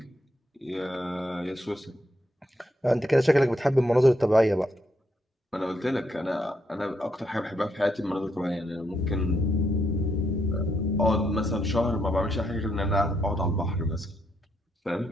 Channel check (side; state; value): both; normal; correlation 0.77